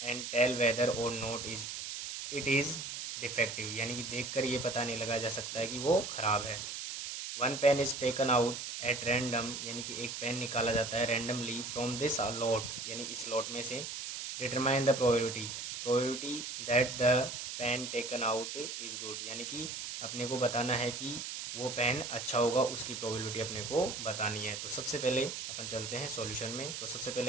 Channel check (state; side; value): noise; right; hiss, 6 dB below the sound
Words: and tell whether और not is it is defective, यानी कि देखकर ये पता नहीं लगा जा सकता है कि वो ख़राब है। One pen is taken out at random, यानी कि एक पेन निकाला जाता है रैंडमली फ्रॉम दिस लॉट, यानी इस लॉट में से। Determine the probability that the pen taken out is good, यानी कि अपने को बताना है कि वो पेन अच्छा होगा, उसकी प्रोबेबिलिटी अपने को बतानी है। तो सबसे पहले अपन चलते हैं सॉल्यूशन में। तो सबसे